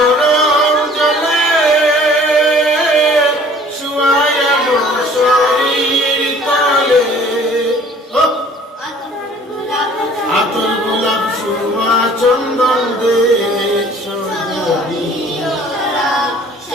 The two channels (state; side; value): normal; both; correlation 0.52